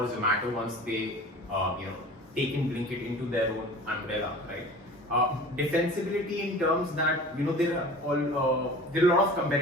Zomato once they, take in Blinkit into their own umbrella, right? Defensibility in terms that there are a lot of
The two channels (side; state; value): both; normal; correlation 0.40